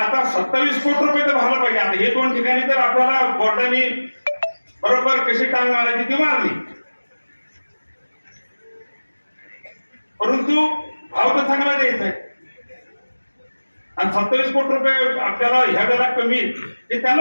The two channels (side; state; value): both; inverted; correlation -1.00